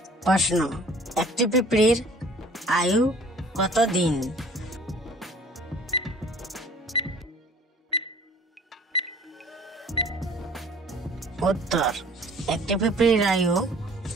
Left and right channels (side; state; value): both; normal; correlation 0.51